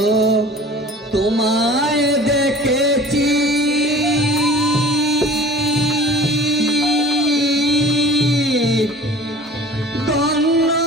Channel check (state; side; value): normal; both; correlation 0.44